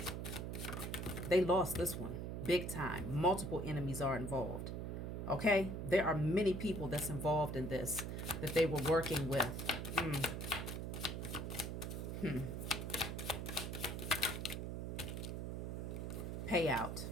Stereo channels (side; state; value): right; noise; hum, 4 dB below the sound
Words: They lost this one big time. Multiple enemies are involved. Okay? There are many people that's involved in this that they were working with. Payout.